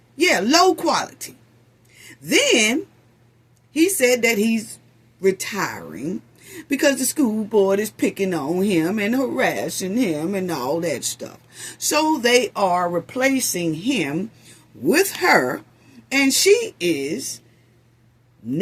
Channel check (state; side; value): identical; both; correlation 1.00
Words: Yeah, low quality. Then he said that he's retiring because the school board is picking on him and harassing him and all that stuff. So they are replacing him with her, and she is